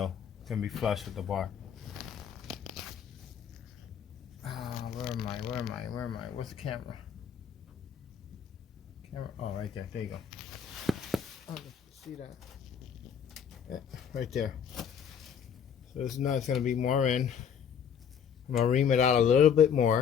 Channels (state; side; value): quieter; right; 7.7 dB